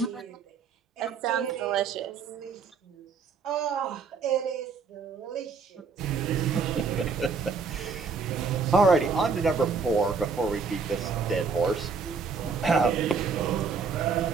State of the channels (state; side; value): quieter; left; 5.1 dB